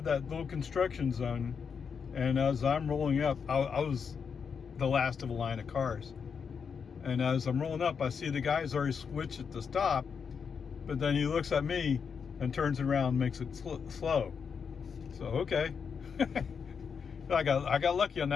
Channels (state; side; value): quieter; right; 6.3 dB